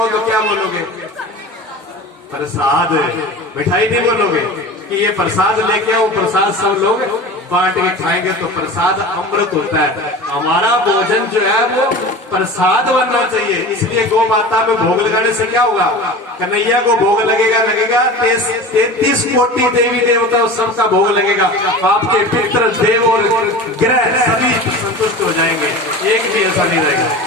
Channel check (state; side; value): normal; both; correlation 0.34